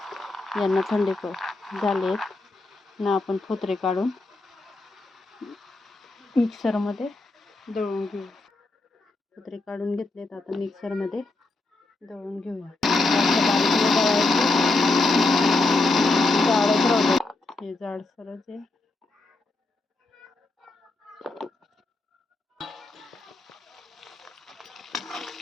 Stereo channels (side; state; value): right; quieter; 3.2 dB